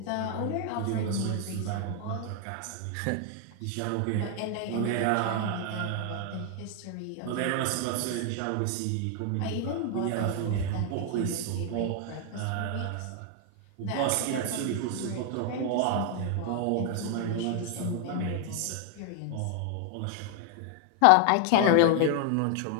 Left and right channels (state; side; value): different; both; correlation 0.00